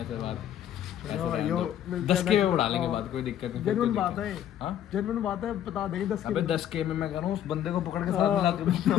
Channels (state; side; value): quieter; right; 10.7 dB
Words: ऐसे बात ऐसे चलो, रहने यो, दो। मिलते 10 हैं के next- में बढ़ा लेंगे हाँ। बात कोई दिक्कत नहीं फिर जेन्युइन कोई बात दिक्कत है नहीं। हाँ जेन्युइन बात है बता देंगे 10 अबे 10 के में मैं कह रहा हूँ उस बंदे को पकड़ के साथ मिला